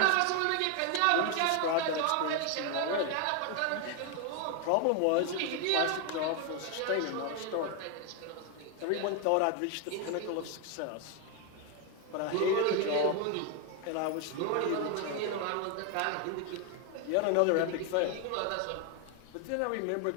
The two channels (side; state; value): both; different; correlation 0.01